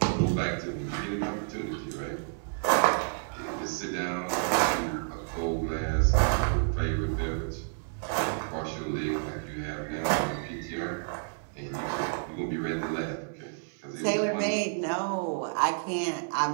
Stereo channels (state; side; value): silent; left; 58 dB below the other